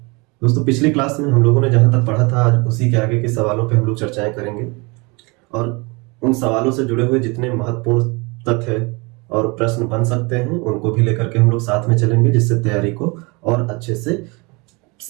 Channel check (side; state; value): left; quieter; 28.0 dB